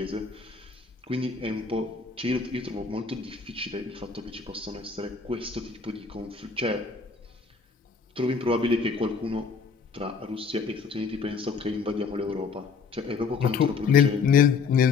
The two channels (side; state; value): right; quieter; 5.2 dB